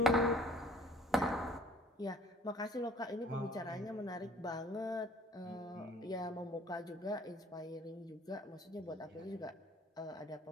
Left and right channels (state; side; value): normal; both; correlation 0.55